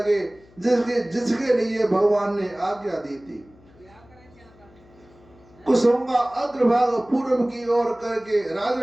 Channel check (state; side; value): noise; left; hum, 27 dB below the sound